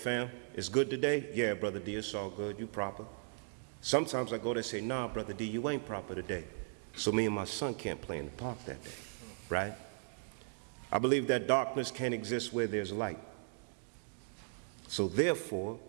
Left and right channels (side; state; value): left; silent; digital silence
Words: it's good today? Yeah, Brother D, it's all good. You proper. Sometimes I go there and say, nah, Brother D, you ain't proper today. So me and my son can't play in the park that day, right? I believe that darkness can't exist where there's light. So therefore,